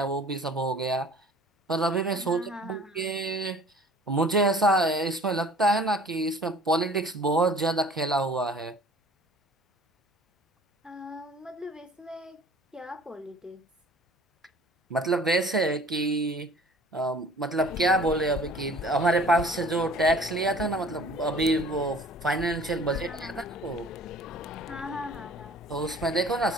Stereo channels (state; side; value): normal; both; correlation 0.49